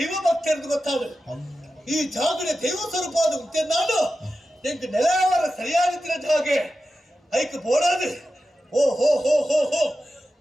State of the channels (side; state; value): both; normal; correlation 0.92